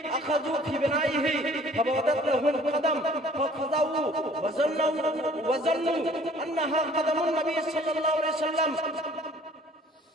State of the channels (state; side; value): normal; both; correlation 0.54